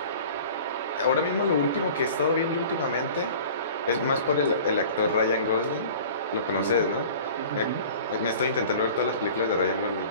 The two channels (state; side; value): inverted; both; correlation -0.43